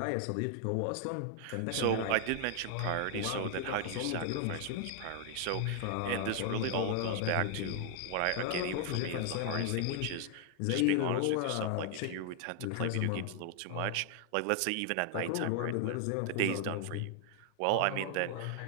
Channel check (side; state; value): both; different; correlation 0.00